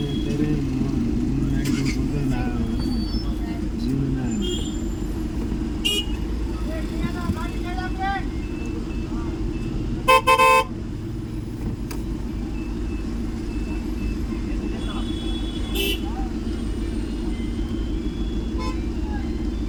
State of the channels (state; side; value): identical; both; correlation 1.00